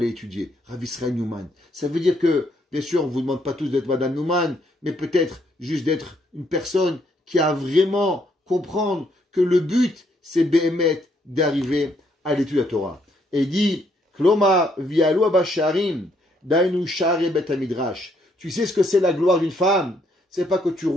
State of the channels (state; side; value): normal; both; correlation 0.71